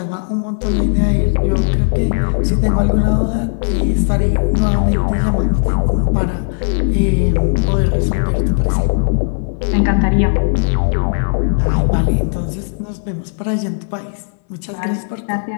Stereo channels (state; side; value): silent; right; 64 dB below the other